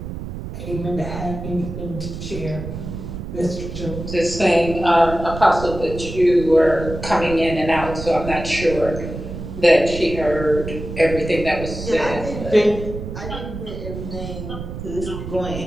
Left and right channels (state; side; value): noise; right; rumble, 8 dB below the sound